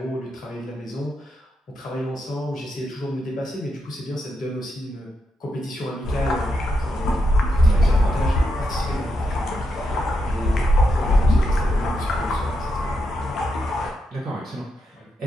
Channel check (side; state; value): both; normal; correlation 0.83